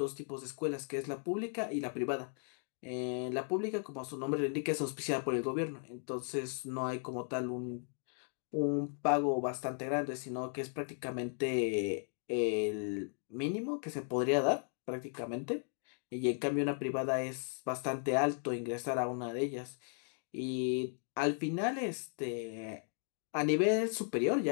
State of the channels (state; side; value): silent; right; 54 dB below the other